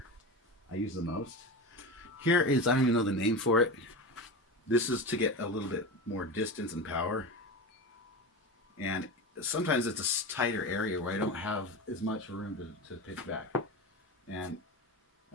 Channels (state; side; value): normal; both; correlation 0.25